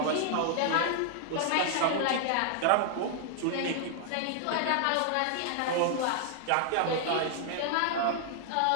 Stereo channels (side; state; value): both; different; correlation -0.01